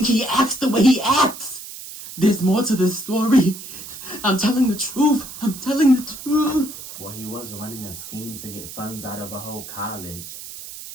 he acts the way he acts? There's more to this story. I'm telling the truth. I'm telling the truth. Well, he was running a scheme to get funds out of a whole college.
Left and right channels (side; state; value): right; noise; hiss, 12 dB below the sound